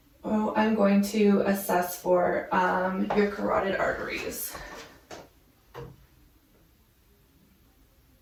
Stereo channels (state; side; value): identical; both; correlation 1.00